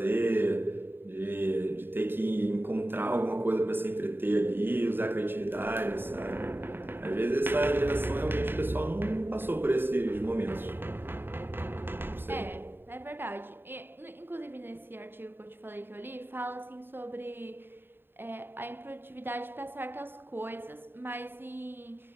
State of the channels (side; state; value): left; late; 0.10 ms